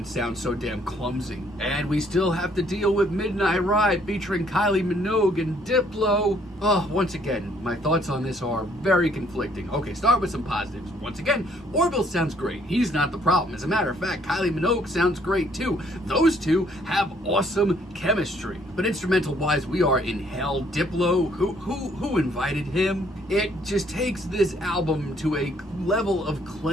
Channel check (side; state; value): both; normal; correlation 0.65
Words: sound so damn clumsy. And we still have to deal with Midnight Ride featuring Kylie Minogue and Diplo. Oh, once again, my thoughts on this are very conflicting. Okay, start with some positives. Once again, Orville sounds great. He's not the problem. As a matter of fact, Kylie Minogue sounds great too. Those two have awesome chemistry. But instrumental-wise, we are in hell. Diplo, who invited him? It just takes this album to a level of